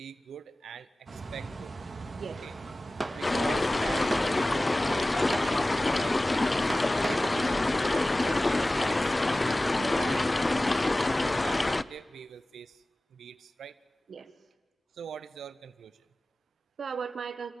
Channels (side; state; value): both; normal; correlation 0.97